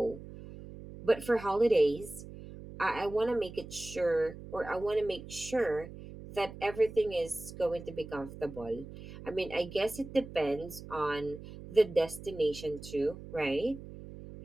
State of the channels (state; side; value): noise; right; hum, 14 dB below the sound